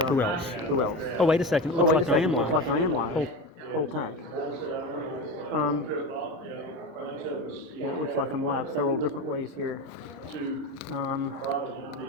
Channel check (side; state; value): both; normal; correlation 0.24